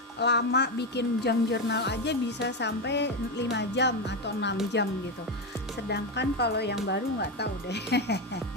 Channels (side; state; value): both; normal; correlation 0.11